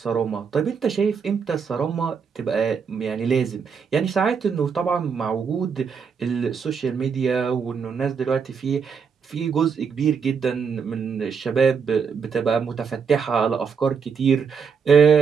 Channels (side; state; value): left; quieter; 6.2 dB